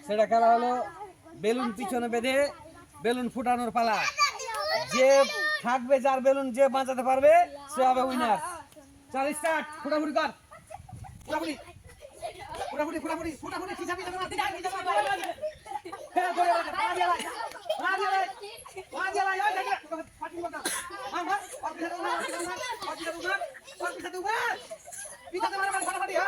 সেটা খেলা হলো বেলুন পিছনে বেঁধে বেলুন ফুটানোর পালা। যে থাকবে, যার বেলুন যে বাঁচাতে পারবে সে হবে উইনার। চল স্টার্ট, ফুটাফুটি কর, ফুটাফুটি ফুটাফুটি ফুটাফুটি ফুটাফুটি খিচাবি না হ্যাঁ ধরে রাখ রাজিয়া লাই রাজিয়া লাই ওই দেখ পাটি বটা হ্যাঁ হ্যাঁ পিছাতে উঠা পিছাতে মারা ফাটাফাটি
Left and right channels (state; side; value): identical; both; correlation 1.00